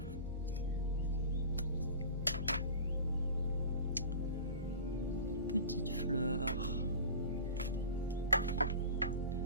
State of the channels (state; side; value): inverted; both; correlation -0.36